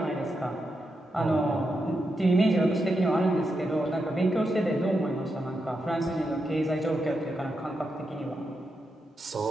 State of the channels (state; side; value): normal; both; correlation 0.85